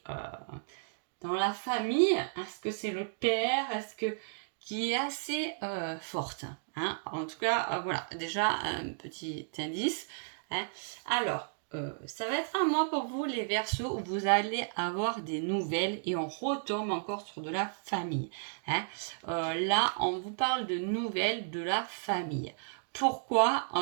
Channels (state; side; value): silent; left; digital silence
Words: dans la famille. Est-ce que c'est le père? Est-ce que qui est assez forte, hein? En tout cas, voilà, déjà un petit indice, hein. Alors, ça va être un mois pour vous, les Verseaux, où vous allez avoir des nouvelles et on retombe encore sur de la famille, hein. Là, on vous parle de nouvelles de la famille. Pourquoi?